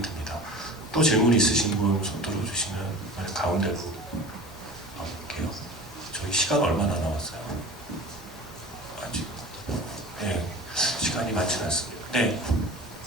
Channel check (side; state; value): both; normal; correlation 0.37